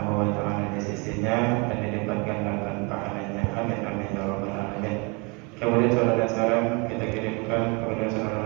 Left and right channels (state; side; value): quieter; left; 30.0 dB